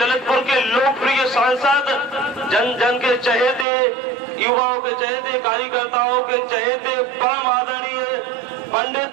के लोकप्रिय सांसद, जन जन के चहेते, युवाओं के चहेते, कार्यकर्ताओं के चहेते, परम आदरणीय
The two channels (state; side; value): drops out; left; at 3.7 s